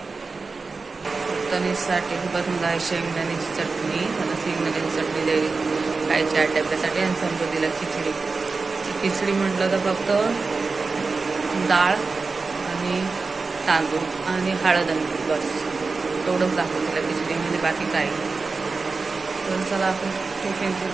तनिषसाठी बनवलं आहे शेंगदाण्याची चटणी. मला शेंगदाण्याची चटणी द्यावी खायची 8 डब्यासाठी आणि समृद्धीला खिचडी. खिचडी म्हटलं तर फक्त डाळ आणि तांदूळ आणि हळद आणि बस तेवढंच दाखवतं तिला खिचडीमध्ये, बाकी काही. तर चला आपण टिफिनची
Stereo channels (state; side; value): quieter; left; 4.2 dB